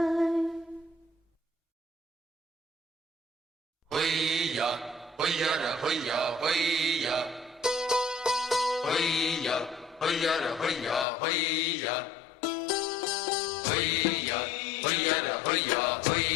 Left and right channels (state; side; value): drops out; right; at 11.1 s